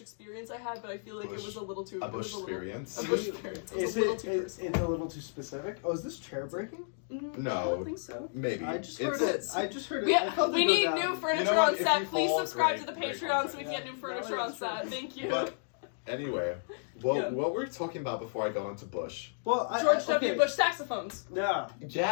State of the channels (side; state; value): right; silent; digital silence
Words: experience I had, but I feel like Bush- it was a little too... a it was bush little- experience? A bush experience. It was Is a little it too is personal. it a little too specific? Oh, is this chair breaking? I No. don't think so. Maybe. I just It's- heard it. I just heard it. I Yeah, felt it we go need down. new furniture You know what? on If set. you Please fall, subscribe great, to the great Patreon so we content. can get new furniture Yeah, on that's set. true. Thank you. But anyway, Yeah. what we're talking about before I go into Bush. Well, George W. okay. Bush saxophones. Yeah.